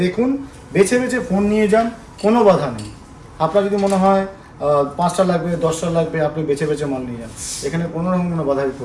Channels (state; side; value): identical; both; correlation 1.00